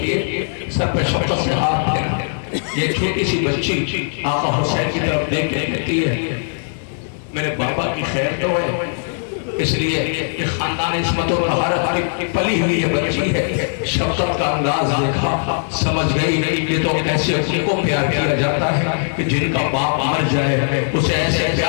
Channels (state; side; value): silent; right; digital silence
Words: سر پہ شفقت سے ہاتھ پھیرا. یہ چھوٹی سی بچی آقا حسین کی طرف دیکھ کے کہتی ہے میرے بابا کی خیر تو ہے, اس لیے کہ خاندان عصمت و طہارت کی پلی ہوئی یہ بچی ہے. شفقت کا انداز دیکھا, سمجھ گئی یہ تو ایسے ان کو پیار کیا جاتا ہے کہ جن کا باپ مر جائے اسے ایسے